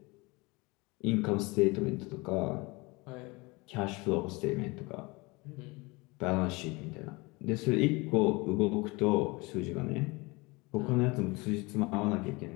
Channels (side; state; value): right; quieter; 25.1 dB